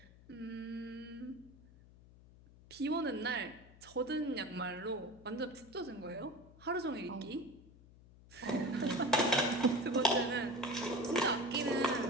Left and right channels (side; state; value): left; noise; hum, 22 dB below the sound